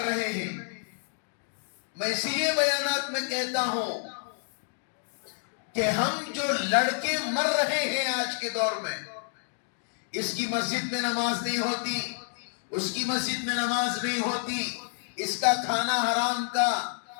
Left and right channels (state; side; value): silent; right; digital silence